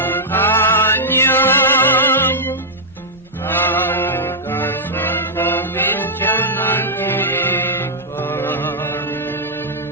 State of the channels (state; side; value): normal; both; correlation -0.07